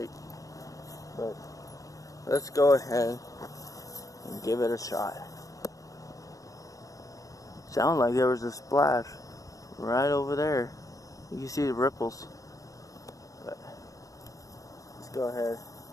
But let's go ahead and give it a shot. Sounded like there was a splash right over there. You can see the ripples. But let's go ahead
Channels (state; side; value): late; right; 0.16 ms